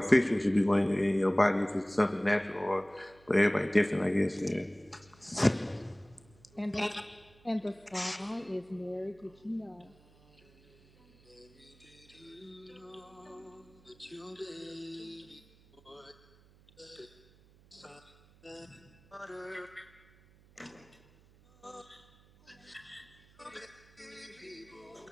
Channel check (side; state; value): right; noise; hum, 27 dB below the sound